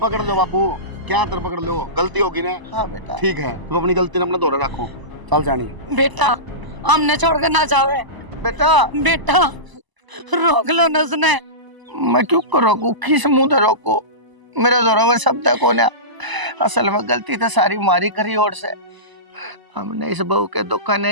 लो बाबू, क्या तर पकड़ लो, गलती होगी ना। हाँ बेटा ठीक है, तुम अपनी गलती ने अपने दोहरे रखो, चल जानी। बेटा हमने छोड़ कर ना जावे बेटा। बेटा, रोक लो न उसने। मैं क्यों को रोकू, किस मुंह से रोकू, मेरे जोरों में शब्द को ना। असल में गलती तो सारी मारी करी ओर से। हमने इस बहू के दुख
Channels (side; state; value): left; late; 1.0 ms